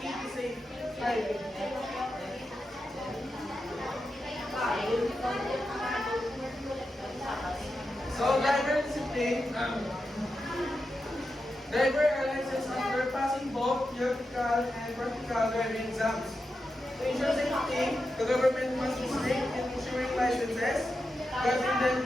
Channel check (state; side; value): normal; both; correlation 0.89